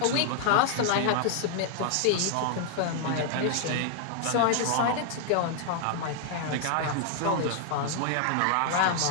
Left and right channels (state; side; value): different; both; correlation 0.00